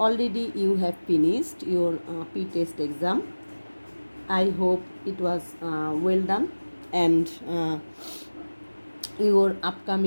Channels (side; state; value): both; inverted; correlation -1.00